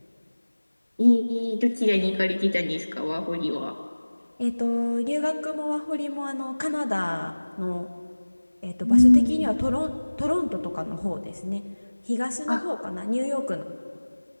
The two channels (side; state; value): both; inverted; correlation -1.00